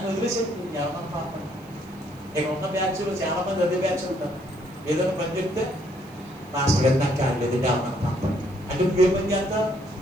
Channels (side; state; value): right; noise; hiss, 28 dB below the sound